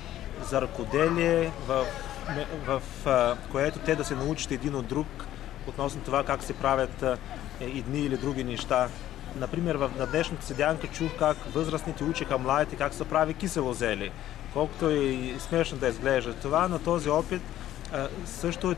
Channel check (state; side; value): quieter; right; 13.0 dB